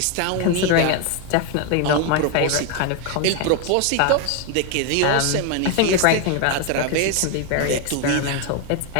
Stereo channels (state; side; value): different; both; correlation 0.01